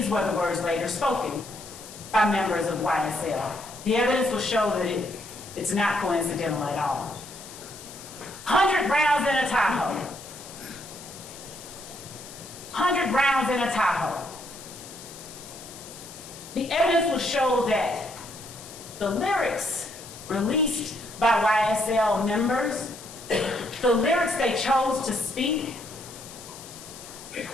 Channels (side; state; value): left; noise; hiss, 15 dB below the sound